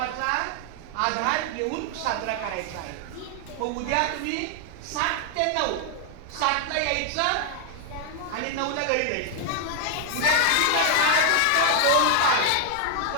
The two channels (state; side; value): different; both; correlation 0.00